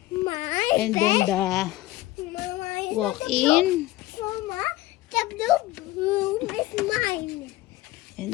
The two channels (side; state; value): right; quieter; 17.2 dB